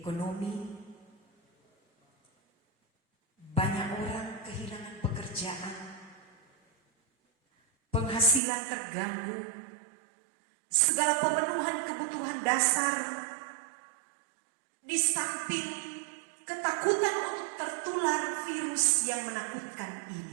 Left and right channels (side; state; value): left; drops out; at 8.4 s